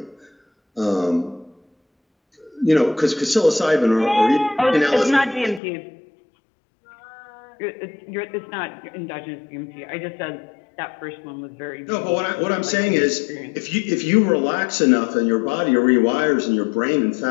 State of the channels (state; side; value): drops out; right; at 5.6 s